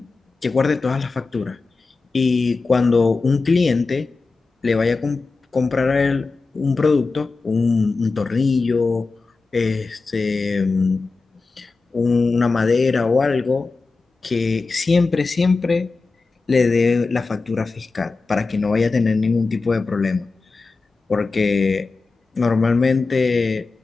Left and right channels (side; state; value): right; quieter; 4.0 dB